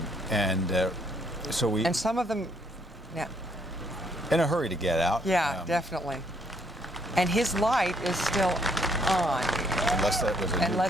we. And some of them, yeah. In a hurry to get out. Yeah, definitely. And his light is still on. Unless that was a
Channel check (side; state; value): both; normal; correlation 0.69